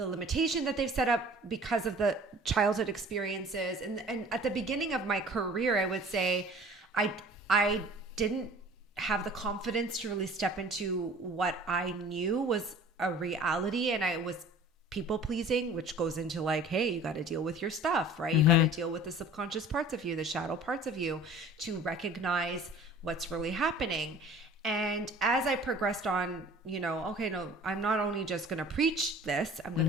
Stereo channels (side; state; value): both; normal; correlation 0.46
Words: limitation that they've set up because of the childhood experiences. And at the beginning of my career, I would say I didn't have the confidence to really step into what I knew was a reality, and I was people pleasing, which goes into like, hey, you got to deal with your stuff, right? You got to deal with the subconscious parts of you, the shadow parts of you, to recognize what's really happening. And as I progressed on, I'm not only just going to preach this, I'm going